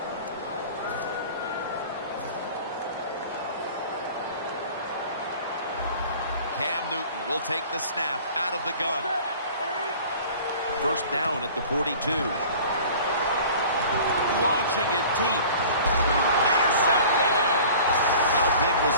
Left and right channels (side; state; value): both; inverted; correlation -0.44